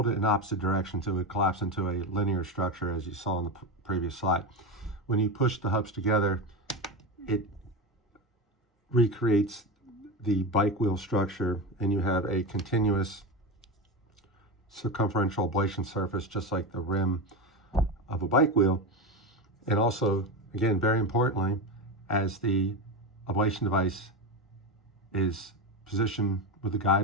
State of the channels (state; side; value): normal; both; correlation 0.18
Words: it in opposite direction, so it would collapse into a linear structure, as you saw in the previous slide. When you push the hubs together, it recreates the bike wheel structure, and you have a continuous circumferential ablation surface, just like the rim of a bike wheel. And also, again, very importantly, as the ablation device is positioned with the